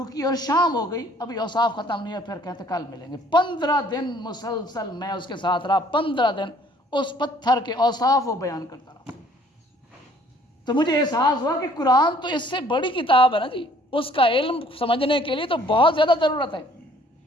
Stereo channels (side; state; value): both; normal; correlation 0.59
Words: کی, اور شام ہو گئی, ابھی اوصاف ختم نہیں ہے. پھر کہتے کل ملیں گے. 15 دن مسلسل میں اس کے ساتھ رہا, 15 دن اس پتھر کے اوصاف وہ بیان کرتا رہا. تو مجھے احساس ہوا کہ قرآن تو اس سے بڑی کتاب ہے نا جی, اس کا علم سمجھنے کے لیے تو بہت زیادہ ضرورت ہے.